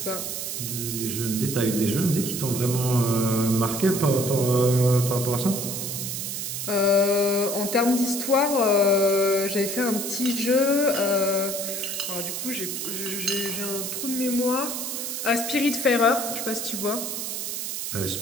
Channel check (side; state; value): right; noise; hiss, 4 dB below the sound